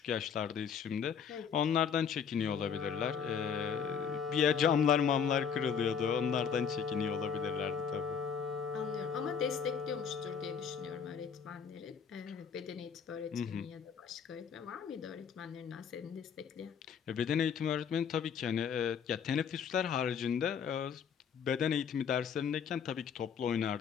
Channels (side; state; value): right; quieter; 7.1 dB